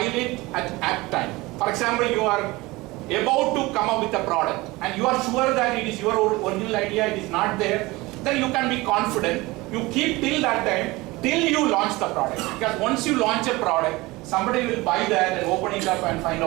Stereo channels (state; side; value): quieter; left; 21.4 dB